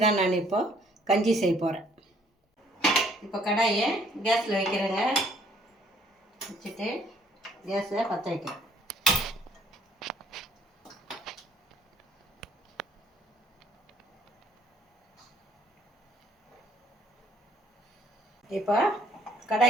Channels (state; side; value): normal; both; correlation 0.62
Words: தான் நான் இப்போது கஞ்சி செய்ய போகிறேன். இப்போ கடாயை கேஸில் வைக்கிறேங்க. வச்சுட்டு கேஸை பற்ற வைக்கிறேன். இப்போ